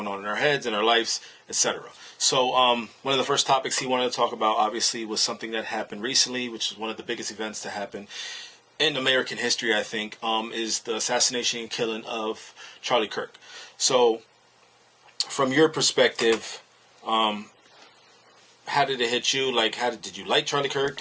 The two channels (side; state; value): both; identical; correlation 1.00